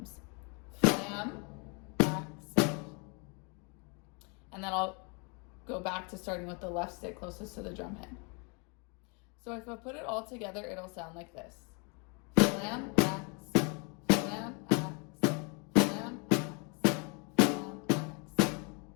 Flam, accent. And then I'll go back to starting with the left stick closest to the drum head. So if I put it all together, it'll sound like this. Flam, accent, flam, accent, flam, accent, flam, accent.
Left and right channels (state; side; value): quieter; right; 33.7 dB